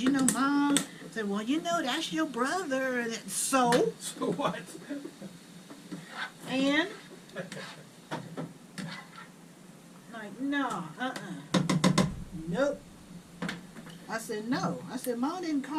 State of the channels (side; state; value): both; identical; correlation 1.00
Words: you know, Mom. I said, well, you know, that's your brother. So? So what? And? Like, no, nope. I said, no. I said, Mom didn't